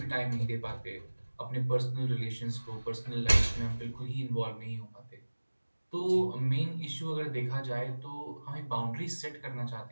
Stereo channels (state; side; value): inverted; both; correlation -1.00